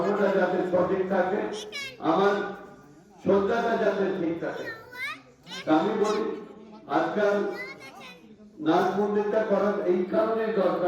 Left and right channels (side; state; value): both; identical; correlation 1.00